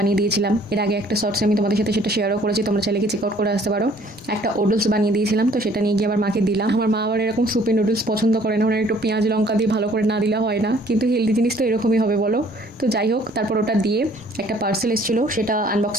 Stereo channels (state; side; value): normal; both; correlation 0.58